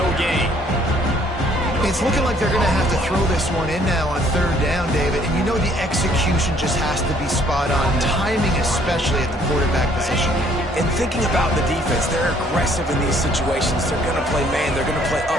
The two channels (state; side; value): normal; both; correlation 0.62